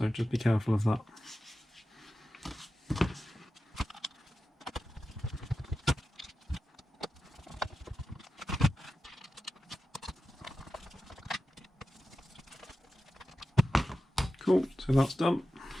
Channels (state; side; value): normal; both; correlation 0.93